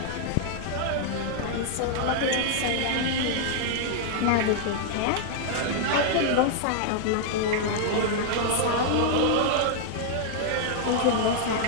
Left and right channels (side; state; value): both; different; correlation -0.01